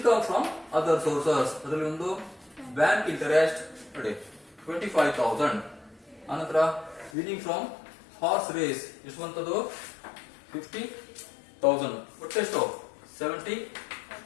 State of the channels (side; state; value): right; drops out; at 7.1 s